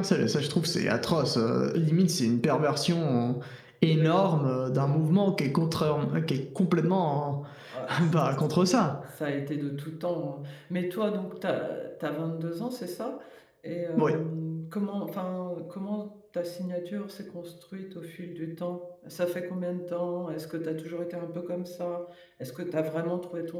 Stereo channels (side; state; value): both; identical; correlation 1.00